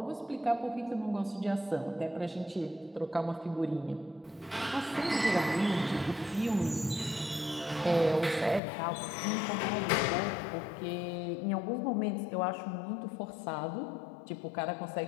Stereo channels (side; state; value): right; drops out; at 8.6 s